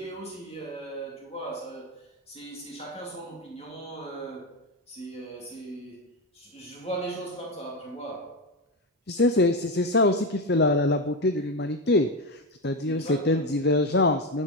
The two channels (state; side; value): normal; both; correlation 0.13